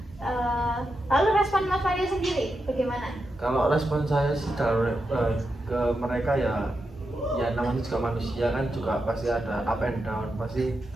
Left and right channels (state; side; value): normal; both; correlation 0.87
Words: Lalu respon Mas Mario sendiri bagaimana? Kalau respon saya sih ke mereka ya namanya juga manusia kan, juga pasti ada up and down. Pasti